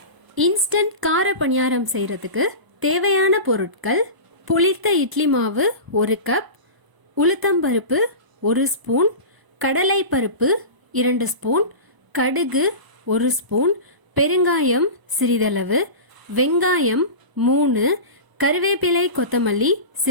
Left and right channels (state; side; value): late; left; 1.0 ms